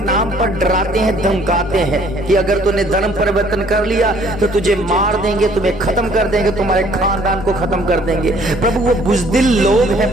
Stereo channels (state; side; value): normal; both; correlation 0.59